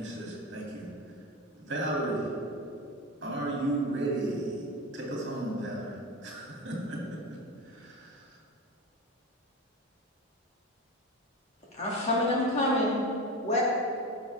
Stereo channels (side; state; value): both; normal; correlation 0.23